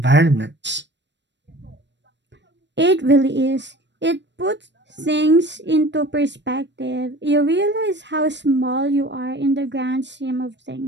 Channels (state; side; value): late; left; 0.52 ms